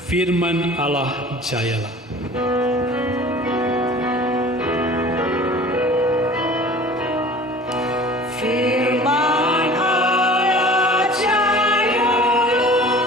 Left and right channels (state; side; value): normal; both; correlation 0.44